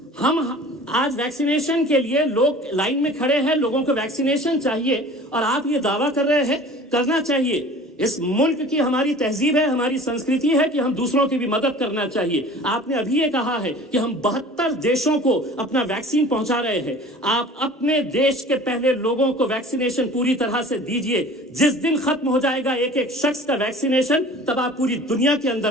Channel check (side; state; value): both; normal; correlation 0.44